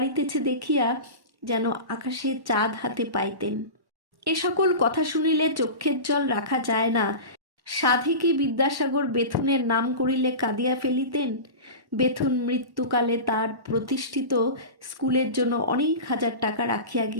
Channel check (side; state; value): left; late; 1.1 ms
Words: দেখিয়া যেন আকাশে চাঁদ হাতে পাইতেন। এ সকল কথা শুনিলে চক্ষের জল রাখা যায় না। সাধে কি বিদ্যাসাগর বেথুনের নাম করিলে কাঁদিয়া ফেলিতেন? বেথুন মৃত্যুকালে তার প্রতিষ্ঠিত স্কুলের জন্য অনেক হাজার টাকা রাখিয়া